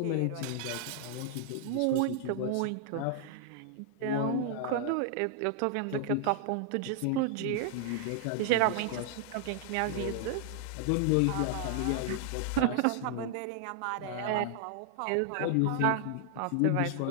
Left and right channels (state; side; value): different; both; correlation -0.01